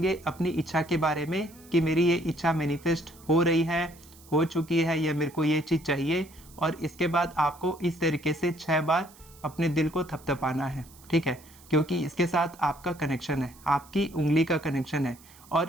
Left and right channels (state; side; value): noise; right; hiss, 24 dB below the sound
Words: अपनी इच्छा के बारे में कि मेरी ये इच्छा मैनिफेस्ट हो रही है, हो चुकी है, या मेरे को ये चीज़ चाहिए। और इसके बाद आपको इस तरीके से 6 बार अपने दिल को थपथपाना है। ठीक है, क्योंकि इसके साथ आपका कनेक्शन है, आपकी उंगली का कनेक्शन है।